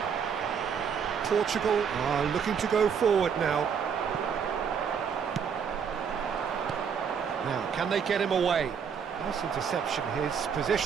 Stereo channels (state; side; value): quieter; left; 7.0 dB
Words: Portugal are looking to go forward now. Now, can they get him away? Nice interception, his